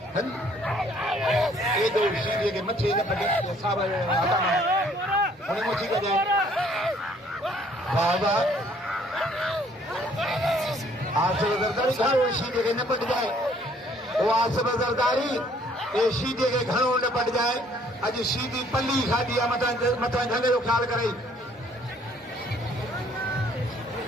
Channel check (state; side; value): normal; both; correlation 0.61